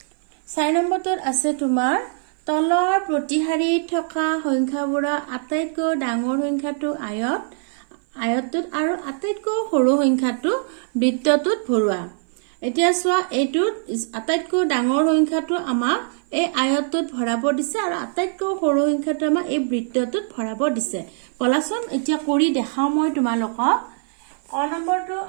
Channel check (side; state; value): left; silent; 56 dB below the other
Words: 4 নম্বৰটোত আছে তোমাৰ তলৰ প্ৰতিহাৰীত থকা সংখ্যাবোৰৰ আটাইতকৈ ডাঙৰ সংখ্যাটো আয়তটোত আৰু আটাইতকৈ সৰু সংখ্যাটো বৃত্তটোত ভৰোৱা। এতিয়া চোৱা এইটোত আটাইতকৈ ডাঙৰ সংখ্যাটো আমাক এই আয়তটোত ভৰাব দিছে আৰু আটাইতকৈ সৰু সংখ্যাটো আমাক এই বৃত্তটোত ভৰাব দিছে। বলাচোন এতিয়া কৰি দেখাও মই তোমালোকক। ক নম্বৰটো